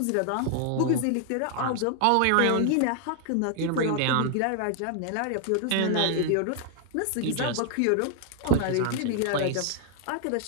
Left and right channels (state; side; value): different; both; correlation 0.00